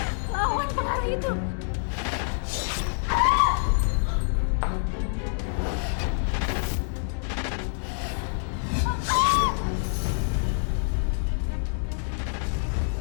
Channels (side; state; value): right; silent; digital silence